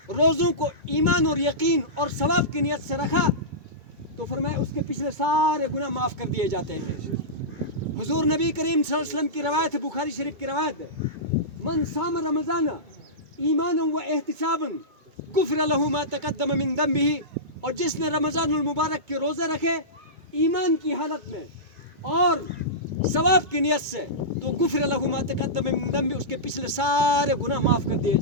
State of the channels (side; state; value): left; late; 2.3 ms